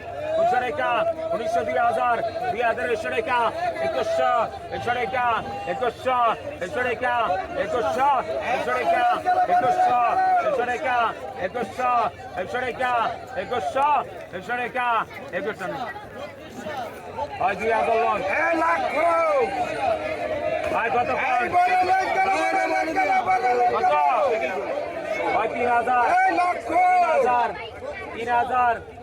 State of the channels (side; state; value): both; identical; correlation 1.00